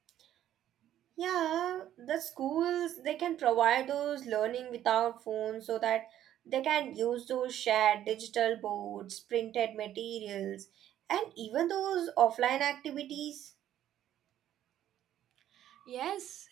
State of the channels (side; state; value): left; quieter; 11.7 dB